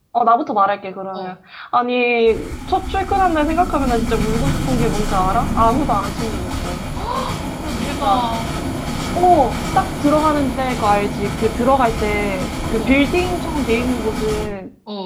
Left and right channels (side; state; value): both; identical; correlation 1.00